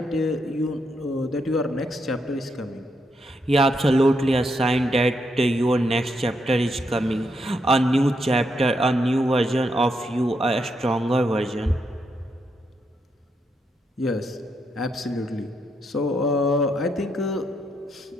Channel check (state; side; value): normal; both; correlation 0.80